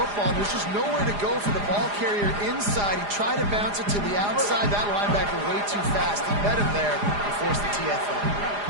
There's just nowhere to go for the ball carrier inside. He tried to bounce it to the outside. That linebacker way too fast. He met him there and forced the TFL.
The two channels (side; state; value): left; late; 4.9 ms